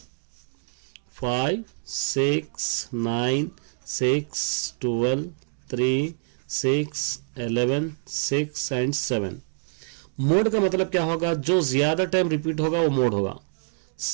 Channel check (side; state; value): left; silent; digital silence